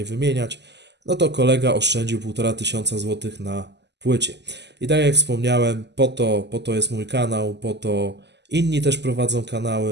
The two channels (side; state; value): left; late; 0.50 ms